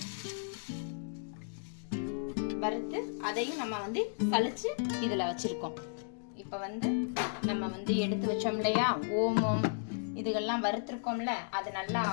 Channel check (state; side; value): silent; right; digital silence